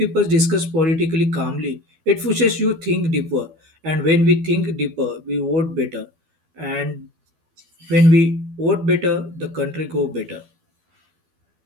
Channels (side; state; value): left; late; 12 ms